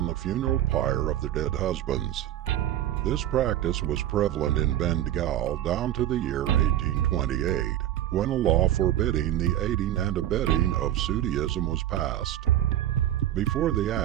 the funeral pyre of their dead husbands. This practice was prevalent in Bengal down to the year 1828, when a law forbidding the aiding and abetting of Sootyism was passed. Before the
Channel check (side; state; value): left; quieter; 12.3 dB